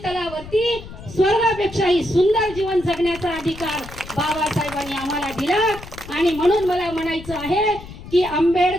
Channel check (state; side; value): noise; left; rumble, 15 dB below the sound